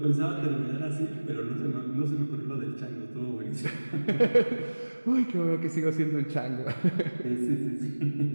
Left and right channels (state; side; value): inverted; both; correlation -1.00